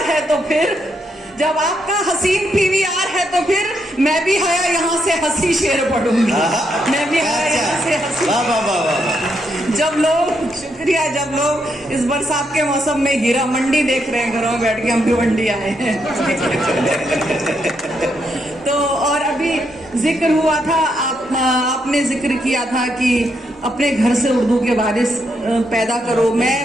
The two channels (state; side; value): normal; both; correlation 0.79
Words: है तो फिर, जब आपका हसीन पीवीआर है तो फिर मैं भी हया यहाँ से हंसी शेर पढ़ूंगी। मैं भी हया यहाँ से हंसी। जब लोग, शुक्रिया, जब लोग इस बरसात के मौसम में हीरा मंडी देख रहे हैं घरों में बैठ के, हम भी मंडी आए हैं। तो और अभी जिक्र हुआ था, आपने जिक्र किया था कि अपने घर से उर्दू के वारिस पैदा करो।